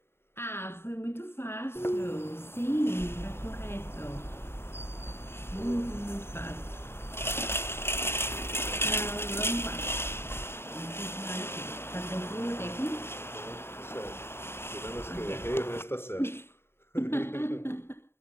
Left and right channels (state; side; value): late; right; 0.12 ms